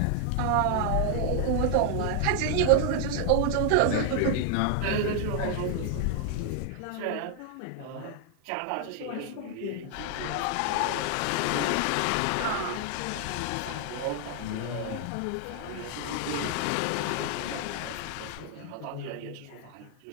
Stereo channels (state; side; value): different; both; correlation 0.00